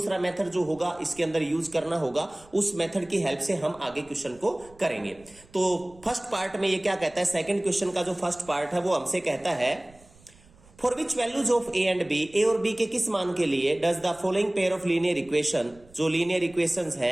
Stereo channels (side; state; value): right; noise; rumble, 26 dB below the sound